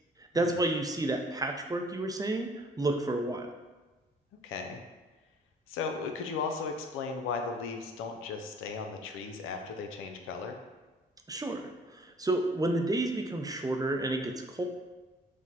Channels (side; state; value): both; normal; correlation 0.54